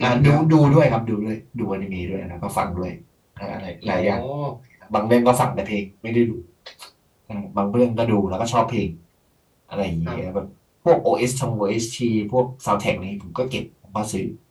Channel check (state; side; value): identical; both; correlation 1.00